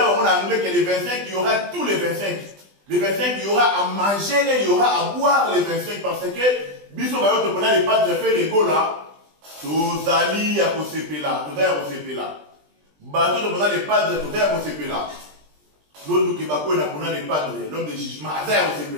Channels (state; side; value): late; left; 20 ms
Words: en anglais que les 25, il y aura tous les 25. Les 25, il y aura à manger et il y aura à boire les 25 parce que Biso Bayoto Pona n'est pas de faire les go là. Tous alliés à Kosepe là. Tout à Kosepe là. Bateau de Pona n'est pas de tout à Kosepe là. L'autre qui va connaître Pona n'est pas de l'homme de jugement. Azar Kosepe